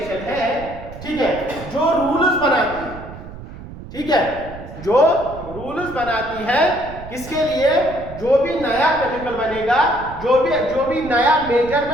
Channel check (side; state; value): right; noise; rumble, 14 dB below the sound